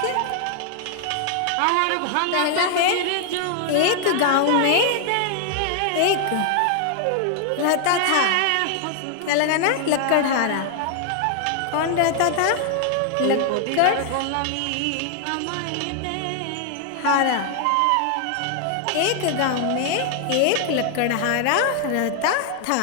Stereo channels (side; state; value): both; different; correlation 0.00